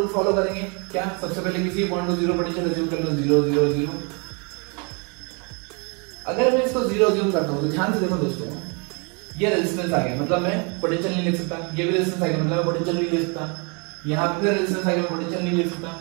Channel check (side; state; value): left; quieter; 33.4 dB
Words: फॉलो करेंगे, क्या, सबसे पहले किसी पॉइंट को जीरो पोटेंशियल अज्यूम कर लो, 0 0 0। अगर मैं इसको 0 अज्यूम करता हूं तो ध्यान से देखो दोस्तों, ये रेजिस्टेंस आ गया, मतलब मैं पोटेंशियल नहीं लिख सकता, ये भी रेजिस्टेंस आ गया, मतलब मैं पोटेंशियल नहीं लिख सकता, यहाँ पे फिर रेजिस्टेंस आ गया, मैं पोटेंशियल नहीं लिख सकता,